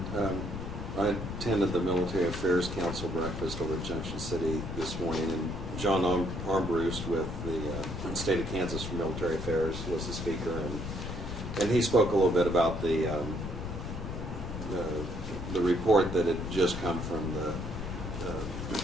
I attended the Military Affairs Council breakfast over at Junction City this morning, and John Armbruster with the State of Kansas for Military Affairs was the speaker, and he spoke a little bit about the report that had just come from the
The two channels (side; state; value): left; noise; rumble, 7 dB below the sound